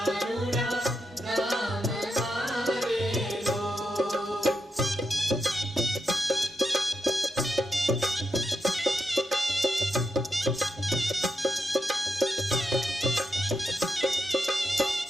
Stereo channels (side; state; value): both; normal; correlation 0.84